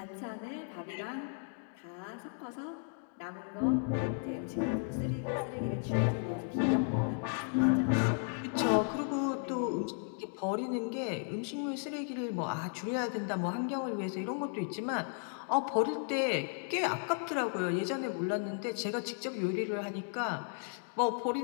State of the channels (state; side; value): silent; right; 55 dB below the other